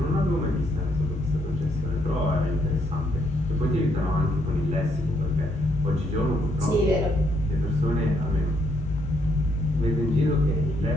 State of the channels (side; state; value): both; normal; correlation 0.73